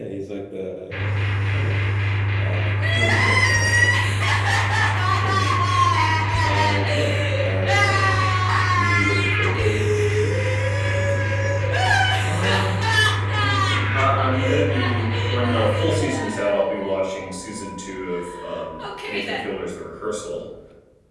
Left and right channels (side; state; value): both; identical; correlation 1.00